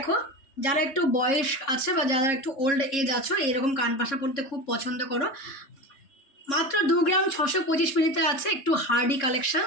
যারা একটু বয়স আছে বা যারা একটু ওল্ড এজ আছো এরকম কানপাশা পরতে খুব পছন্দ করো, মাত্র 2 গ্রাম 625 মিলিতে আছে, একটু হার্ডি কালেকশন।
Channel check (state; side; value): late; right; 3.7 ms